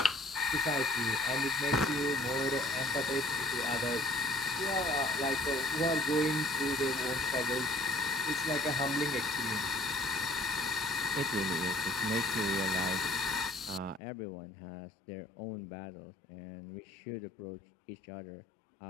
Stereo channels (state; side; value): drops out; right; at 14.0 s